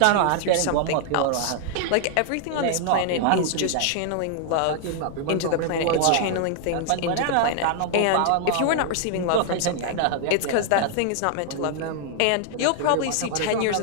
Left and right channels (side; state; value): both; different; correlation 0.00